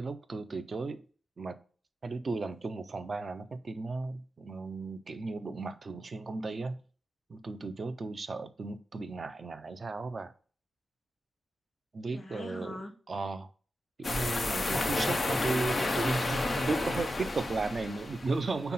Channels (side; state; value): both; normal; correlation 0.90